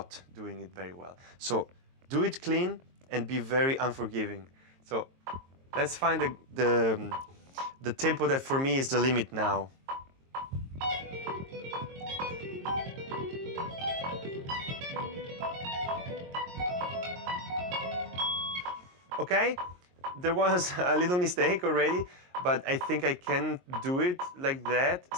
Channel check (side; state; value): left; late; 22 ms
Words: doing it very well. So do it clean and be very unforgiving. So let's find the tempo that for me is the limit now. Okay, there was a little mistake already, but I think I can do it like that.